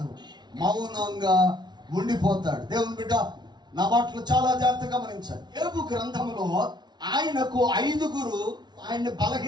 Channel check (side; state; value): left; late; 0.20 ms